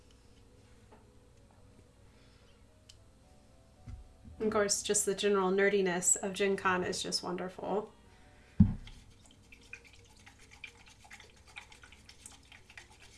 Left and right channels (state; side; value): identical; both; correlation 1.00